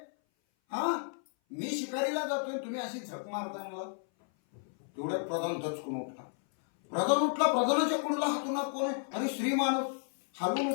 हा मी शिकारीला जातोय, तुम्ही अशी झक मारताय मला. तेवढ्यात प्रधान दचकून उठला. प्रधानाच्या कुंडला हातून कोण आहे? अरे श्री मानव. हालून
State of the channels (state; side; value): silent; right; 56 dB below the other